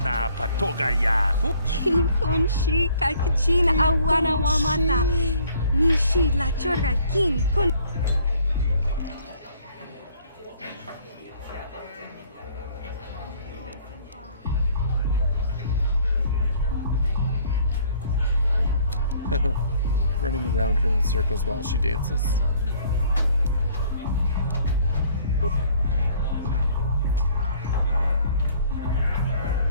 na patoga yahu. King Konshi kakachin awana wamata. Nishi la chorga king kun. Running around her in circles while she dances.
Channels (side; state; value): both; inverted; correlation -0.58